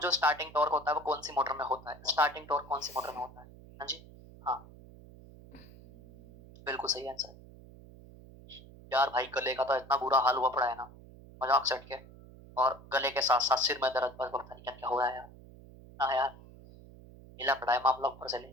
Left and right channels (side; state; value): right; noise; hum, 20 dB below the sound